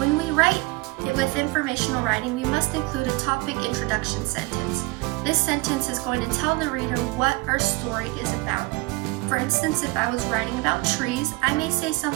we write with informational writing, we must include a topic introduction sentence. This sentence is going to tell the reader what our story is about. For instance, if I was writing about trees, I may say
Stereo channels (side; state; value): left; quieter; 24.1 dB